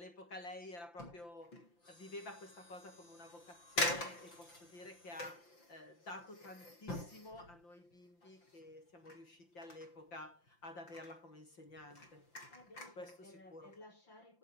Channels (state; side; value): late; right; 5.8 ms